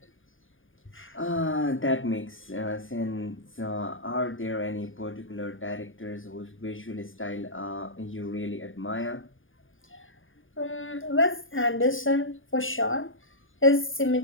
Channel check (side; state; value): right; late; 0.58 ms